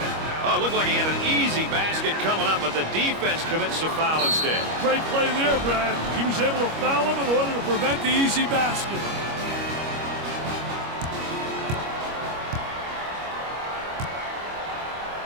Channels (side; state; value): left; late; 25 ms